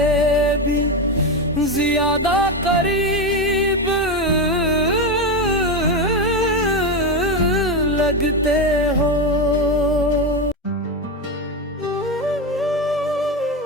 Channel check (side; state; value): both; normal; correlation 0.13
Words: भी ज्यादा करीब लगते हो।